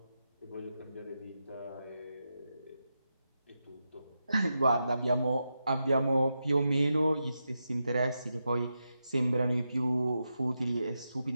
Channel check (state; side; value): inverted; both; correlation -0.88